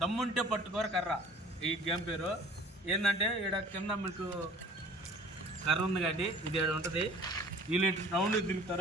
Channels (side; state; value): both; normal; correlation 0.48